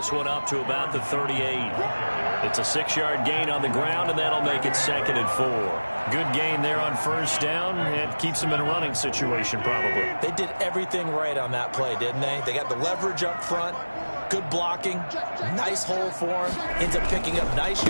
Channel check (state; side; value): inverted; both; correlation -1.00